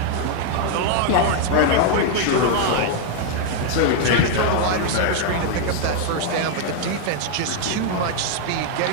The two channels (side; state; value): both; different; correlation 0.00